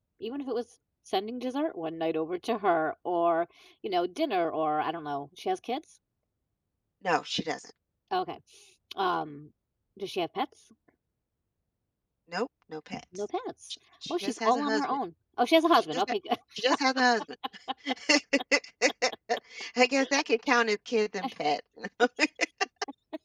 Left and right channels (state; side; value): identical; both; correlation 1.00